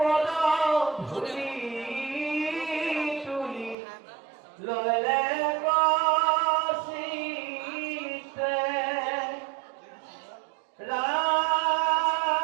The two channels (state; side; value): drops out; left; at 3.8 s